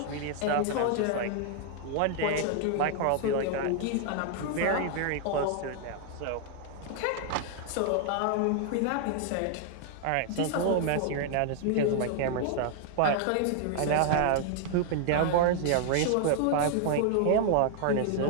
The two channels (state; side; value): different; both; correlation 0.00